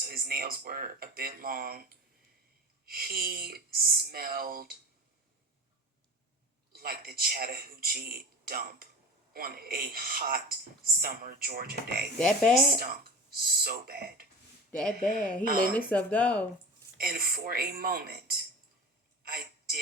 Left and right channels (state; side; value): normal; both; correlation 0.33